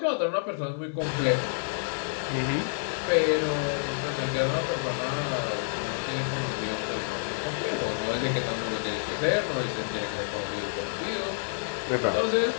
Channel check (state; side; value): silent; right; digital silence